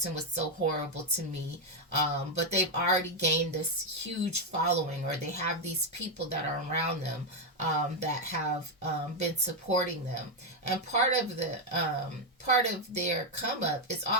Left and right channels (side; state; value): both; normal; correlation 0.03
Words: was so horrible to me. But they've already gained this huge following, or they have these people that are around them that have been supporting them. And part of their come up is